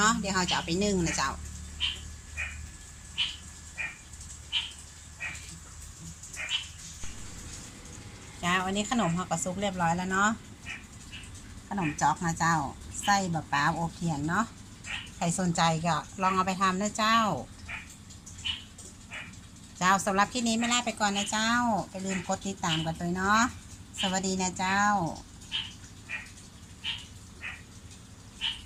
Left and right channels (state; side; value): identical; both; correlation 1.00